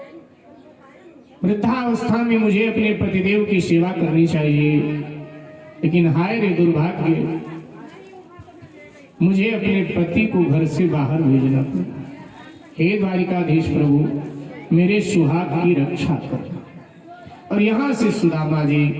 वृद्धावस्था में मुझे अपने पतिदेव की सेवा करनी चाहिए, लेकिन हाय रे दुर्भाग्य, मुझे अपने पति को घर से बाहर भेजना पड़ा। हे द्वारिकाधीश प्रभु मेरे सुहाग की रक्षा करना। और यहाँ से सुदामा जी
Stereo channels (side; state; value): both; identical; correlation 1.00